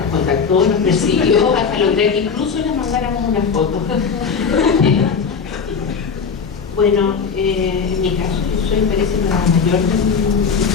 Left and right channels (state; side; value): quieter; right; 5.8 dB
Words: contactó, nos persiguió hasta lograr que incluso le mandáramos una foto. Bueno, en mi caso, yo soy, parece, la mayor de mi